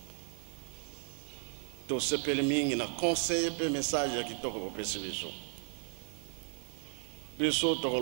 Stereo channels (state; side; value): silent; left; 54 dB below the other